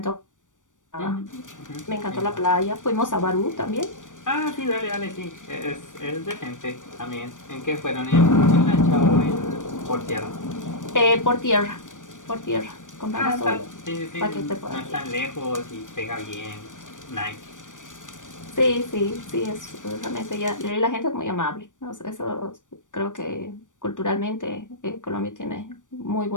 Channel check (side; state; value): right; late; 0.87 ms